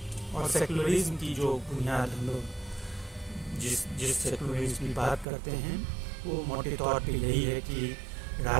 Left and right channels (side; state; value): left; drops out; at 5.2 s